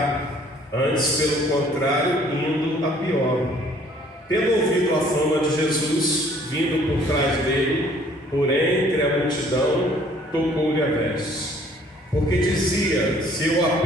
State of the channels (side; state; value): both; normal; correlation 0.58